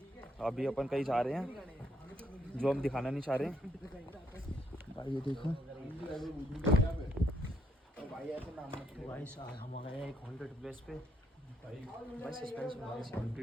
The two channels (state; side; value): normal; both; correlation 0.73